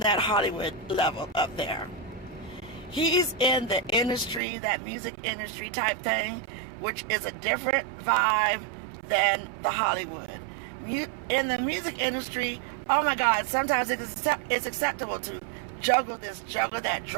Hollywood level up there. He's in the industry, that music industry type thing, which is a different vibe than the Hollywood. In the music industry, oh my God, sometimes it's acceptable to juggle this, juggle that,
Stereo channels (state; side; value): drops out; left; at 4.4 s